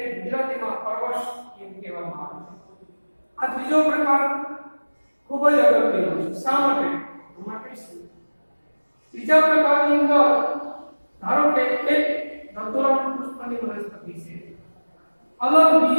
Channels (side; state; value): both; inverted; correlation -1.00